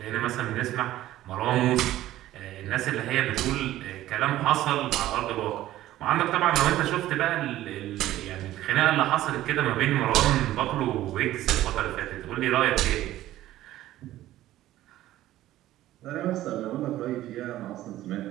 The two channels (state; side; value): quieter; left; 14.5 dB